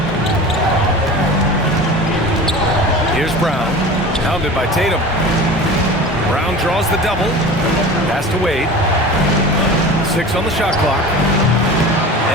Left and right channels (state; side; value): normal; both; correlation 0.36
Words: Here's Brown, pounded by Tatum. Brown draws the double. Pass to Wade. 6 on the shot clock.